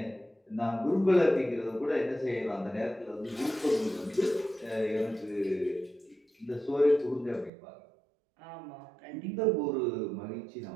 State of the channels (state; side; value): drops out; left; at 7.5 s